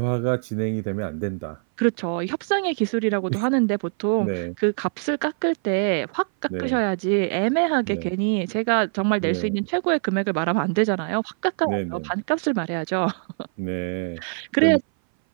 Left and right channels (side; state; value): left; silent; 58 dB below the other